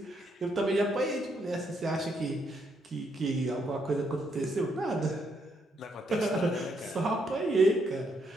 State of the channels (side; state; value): both; normal; correlation 0.76